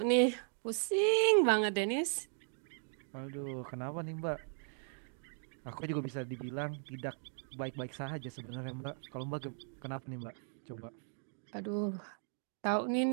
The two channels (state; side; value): silent; left; 53 dB below the other